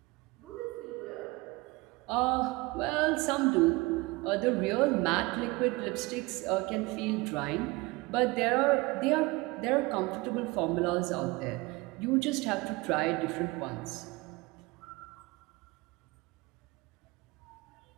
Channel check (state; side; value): quieter; left; 23.6 dB